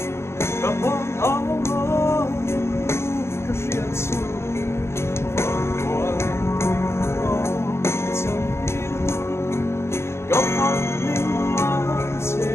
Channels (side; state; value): right; late; 0.13 ms